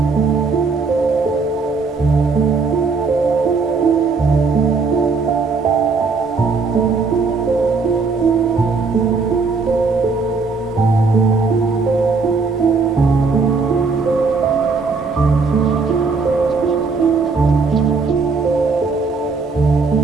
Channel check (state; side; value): quieter; left; 4.5 dB